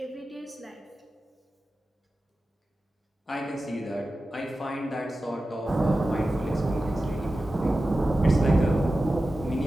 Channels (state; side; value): normal; both; correlation 0.94